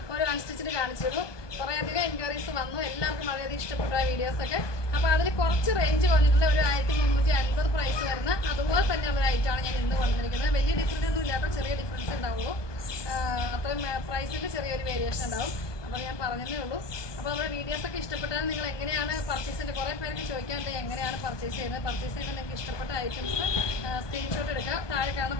ഒരു അൺസ്റ്റിച്ചിട്ട് കാണിച്ചിരുന്നു. കുറേയധികം എൻക്വയറീസ് വന്നു. എല്ലാവർക്കും വളരെയധികം ഇഷ്ടപ്പെട്ട ആ വീഡിയോസൊക്കെ. അപ്പോൾ അതിൽ കുറച്ച് റേഞ്ച് വന്നിട്ടുള്ള ഒരു 1350 പ്രൈസ് വരുന്ന അതുപോലെ തന്നെയുള്ള ഒരു ഐറ്റമാണ് ഞാൻ ഇന്ന് വന്നിരിക്കുന്നത്. വലിയ ഡിഫറൻസ് ഒന്നും ഇല്ലാത്ത ചെറിയ ഡിഫറൻസ് ഉണ്ടാവുള്ളൂ. അത്രയും പ്രൈസിൻ്റെ ചെറിയൊരു വേരിയേഷൻ ഉണ്ടാവും. അപ്പോൾ ഞാൻ പറഞ്ഞതേ ഉള്ളൂ. അപ്പോൾ നമ്മുടെ വീഡിയോസൊക്കെ ഇഷ്ടപ്പെട്ടാൽ നിങ്ങൾ എങ്ങനെയാണ് പർച്ചേസിൻ്റെ കുറേ പേർക്ക് ചോദിക്കാറുണ്ട് എങ്ങനെയാണ് പർച്ചേസ് ചെയ്യുന്നത്. പർച്ചേസ് ചെയ്യുമ്പോൾ നിങ്ങൾക്ക് ഇഷ്ടപ്പെട്ട ഐറ്റംസ് സ്ക്രീൻഷോട്ട് എടുക്കുക, താഴെ കാണുന്ന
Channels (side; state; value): right; late; 1.2 ms